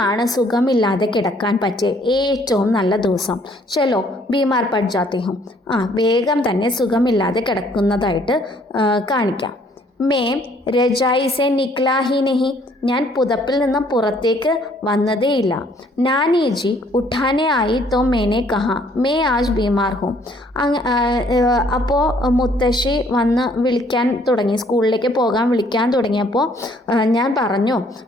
സുഖമില്ലാതെ കിടക്കാൻ പറ്റിയ ഏറ്റവും നല്ല ദിവസം. ചലോ ബീമാർ പഡ് ജാത്തി ഹും, വേഗം തന്നെ സുഖമില്ലാതെ കിടക്കുന്നതായിട്ട് കാണിക്കാം. മേ രജായി സെ നിക്ലാ ഹി നഹി, ഞാൻ പുതപ്പിൽ നിന്നും പുറത്തേക്ക് വന്നതേയില്ല. നാനി ജി ഉഠാനെ ആയി തോ മേനെ കഹാ മേ ആജ് ബീമാർ ഹും, അപ്പോൾ മുത്തശ്ശി വന്ന് വിളിക്കാൻ തുടങ്ങി, സ്കൂളിലേക്ക് പോകാൻ വിളിക്കാൻ തുടങ്ങിയപ്പോൾ ഞാൻ പറഞ്ഞു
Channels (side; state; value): both; normal; correlation 0.62